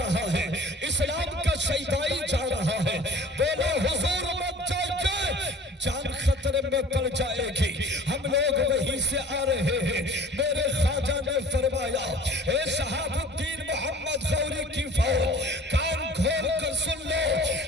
ہے اسلام کا شیدائی جا رہا ہے۔ بولا حضور مت جائیے، جان خطرے میں پڑ جائے گی، ہم لوگ وہیں سے آ رہے ہیں۔ میرے خواجہ نے فرمایا اے شہاب الدین محمد غوری کی فوج، کان کھول کر سن لو،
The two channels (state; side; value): normal; both; correlation 0.46